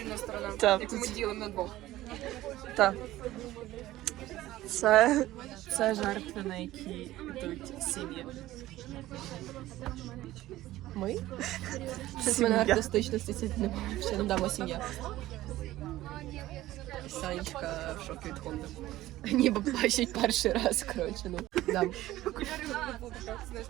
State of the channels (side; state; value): left; quieter; 15.7 dB